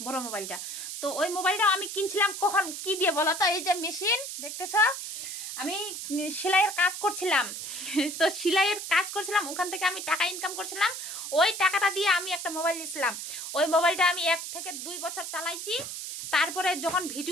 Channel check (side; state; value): right; noise; hiss, 7 dB below the sound